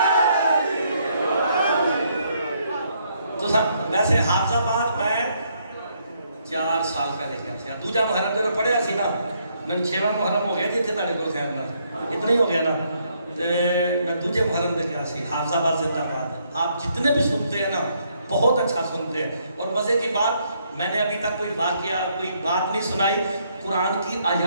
ویسے حافظ آباد میں 4 سال پہلے گیا تھا دوجا محرم جو پڑھیا سی نا میں 6واں محرم ہو گیا جی تھے تاڑے کو خیر نا اتنا ہی ہو گیا نا میں دوجے محرم دے گیا سی حافظ آباد زندہ باد آپ جتنے بھی سنتے ہیں نا بہت اچھا سنتے ہیں اور مزے کی بات میں نے ابھی تک کوئی واقعہ کوئی بات نہیں سنائی قرآن کی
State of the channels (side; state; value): both; inverted; correlation -0.72